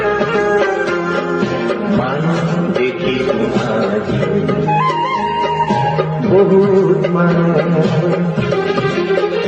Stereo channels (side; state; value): both; identical; correlation 1.00